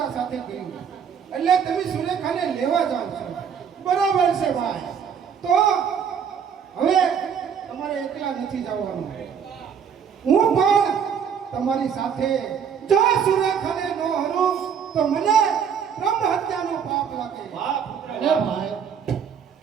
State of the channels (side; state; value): left; quieter; 7.4 dB